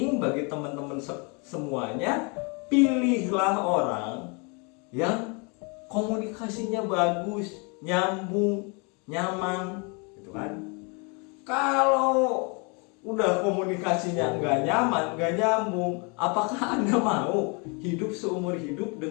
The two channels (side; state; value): right; quieter; 33.1 dB